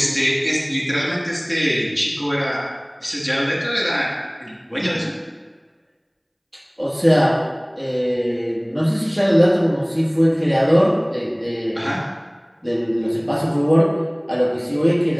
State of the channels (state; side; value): identical; both; correlation 1.00